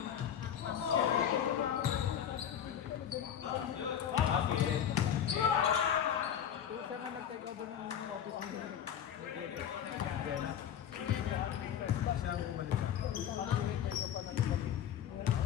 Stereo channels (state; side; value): quieter; right; 9.3 dB